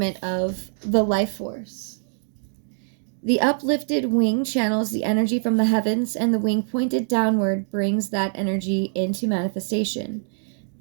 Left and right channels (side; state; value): left; silent; digital silence